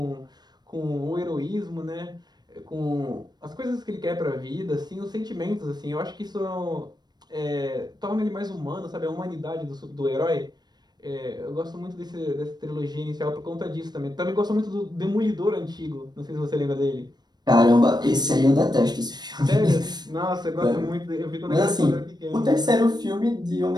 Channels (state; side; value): late; left; 0.20 ms